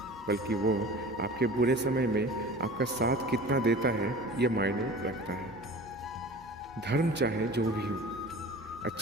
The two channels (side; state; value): left; noise; hum, 23 dB below the sound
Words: बल्कि वो आपके बुरे समय में आपका साथ कितना देता है, यह मायने रखता है। धर्म चाहे जो भी हो,